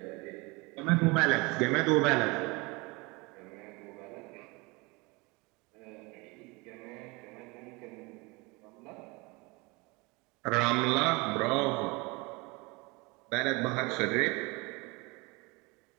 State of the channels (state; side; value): quieter; left; 26.2 dB